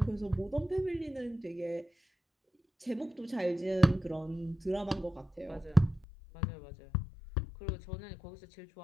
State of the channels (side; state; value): right; drops out; at 6.1 s